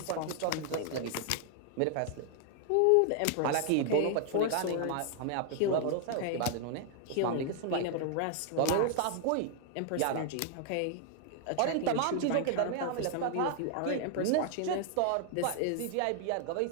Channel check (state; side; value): different; both; correlation 0.00